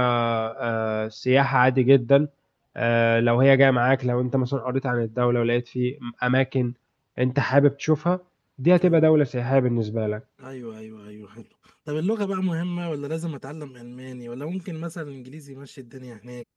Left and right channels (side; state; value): both; identical; correlation 1.00